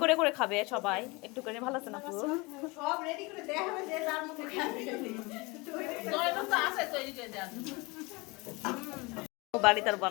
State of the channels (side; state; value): right; quieter; 25.7 dB